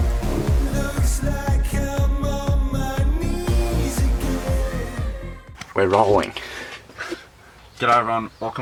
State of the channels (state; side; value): identical; both; correlation 1.00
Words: We're rolling. G'day everyone,